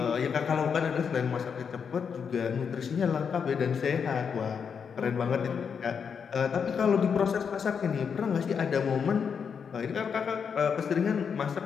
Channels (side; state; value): right; quieter; 6.6 dB